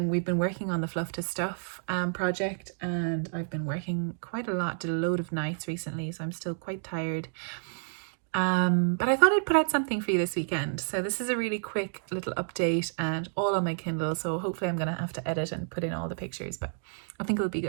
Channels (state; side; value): silent; left; digital silence